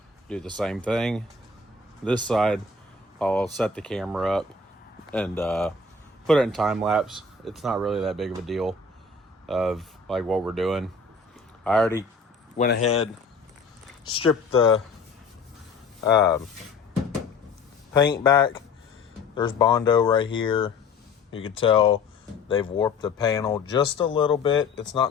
do the same thing. This side, I'll set the camera up and put it in time lapse. It's not really that big of a deal of like what we're doing. I already went ahead, stripped the paint back. There's Bondo right here. You can tell they've warped the panel just a little bit. It's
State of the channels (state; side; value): quieter; right; 4.2 dB